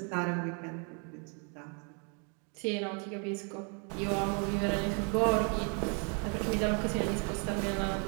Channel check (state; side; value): quieter; left; 37.9 dB